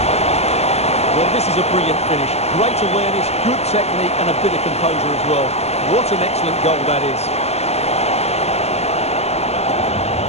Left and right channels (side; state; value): right; late; 0.30 ms